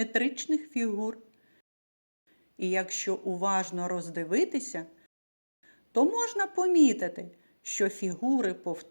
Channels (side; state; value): both; inverted; correlation -1.00